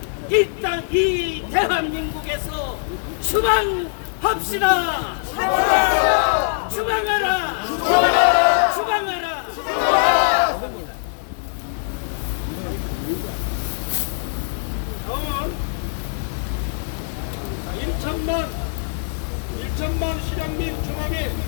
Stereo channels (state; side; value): silent; right; digital silence